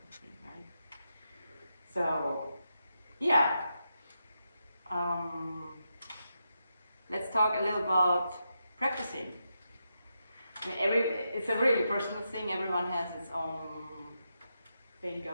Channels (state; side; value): inverted; both; correlation -0.85